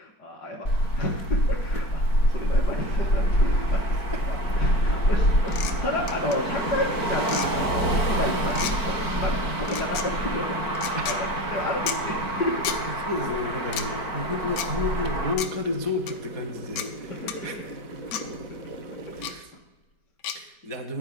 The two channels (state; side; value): late; right; 5.2 ms